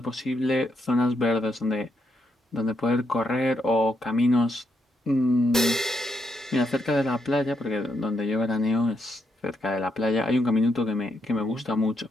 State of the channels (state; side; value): normal; both; correlation 0.79